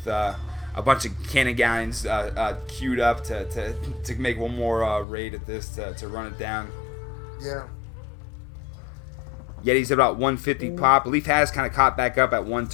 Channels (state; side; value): drops out; right; at 5.1 s